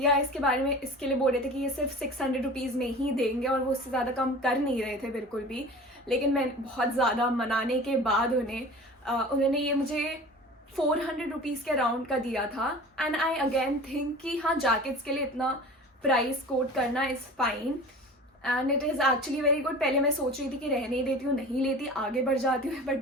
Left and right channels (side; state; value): both; normal; correlation 0.39